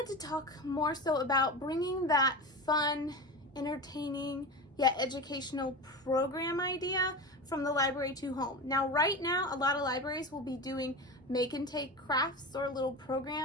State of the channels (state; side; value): normal; both; correlation 0.26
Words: to talk more so about bringing that fun, entertaining, yet educational program idea from the library to home. Now, right now, a lot of libraries will be doing make and take crafts or little